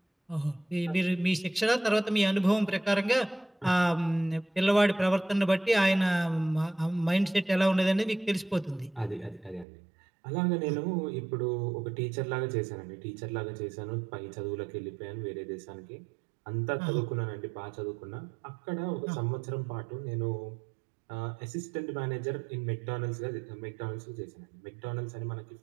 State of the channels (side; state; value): left; drops out; at 9.7 s